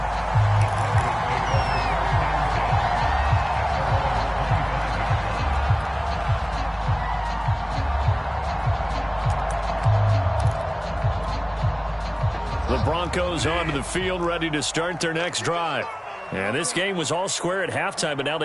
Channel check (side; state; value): both; identical; correlation 1.00